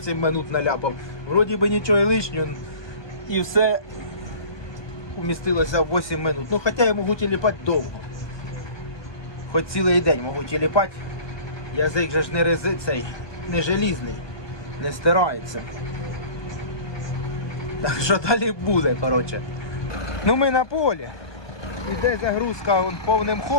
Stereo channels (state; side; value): late; right; 1.2 ms